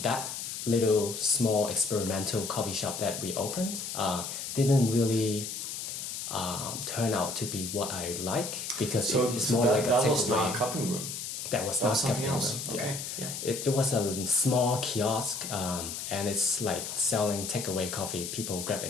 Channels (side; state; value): left; noise; hiss, 6 dB below the sound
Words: That little small experimental coffee shop that we opened didn't really turn out to be what I like, because it's more like a takeaway. That was not a cupping room. That was not something cupping else. room. Okay. Yeah. It was a small kiosk, and it's like selling takeaway coffee. People grab